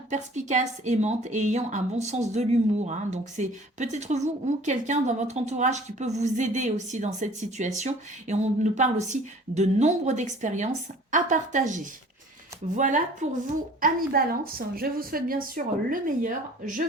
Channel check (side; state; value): both; normal; correlation 0.49